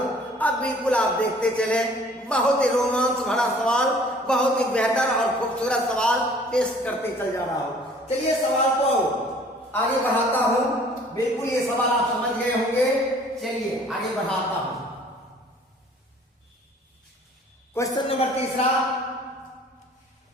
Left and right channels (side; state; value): both; normal; correlation 0.53